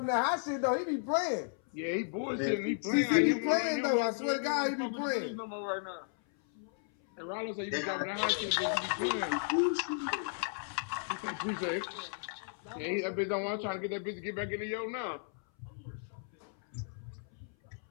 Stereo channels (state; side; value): silent; right; 55 dB below the other